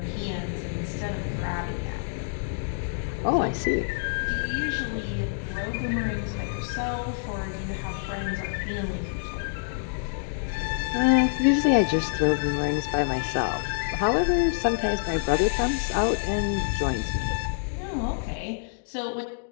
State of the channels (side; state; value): right; silent; digital silence